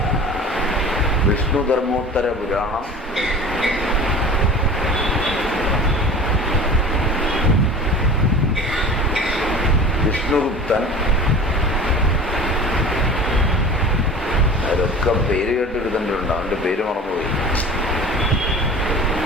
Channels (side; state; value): both; normal; correlation 0.39